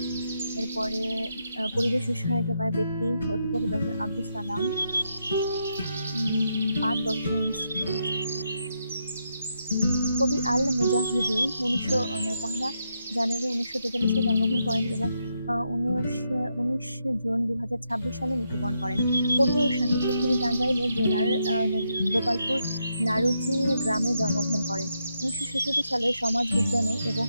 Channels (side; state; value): both; inverted; correlation -0.81